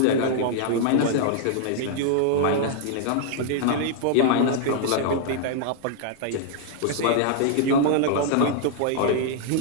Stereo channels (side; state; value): both; different; correlation 0.00